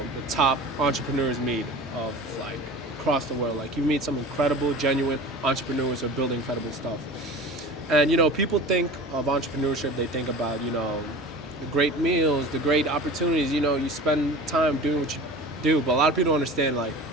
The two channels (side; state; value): both; normal; correlation 0.38